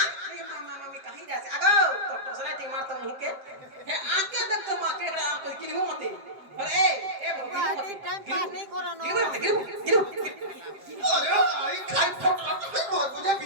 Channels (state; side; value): late; left; 7.7 ms